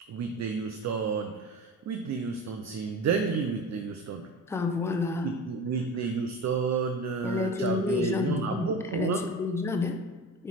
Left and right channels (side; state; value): both; normal; correlation 0.32